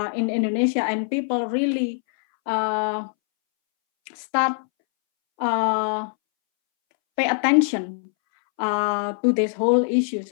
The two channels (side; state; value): right; silent; 64 dB below the other